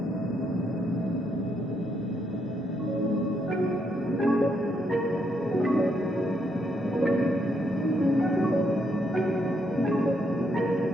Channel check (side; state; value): both; normal; correlation 0.76